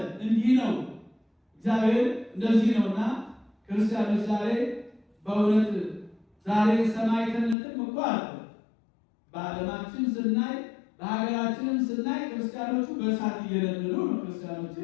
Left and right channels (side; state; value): right; drops out; at 7.6 s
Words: እንዲህ ነው እግዚአብሔር፣ እንደዚህ ነውና ክርስቲያኖች ዛሬ በእውነት ዛሬ ሰማዕትነትም እኮ አለ። በዓለማችን ስናይ በሀገራችንም ስናይ ክርስቲያኖቹ በእሳት እየነደዱ ነው።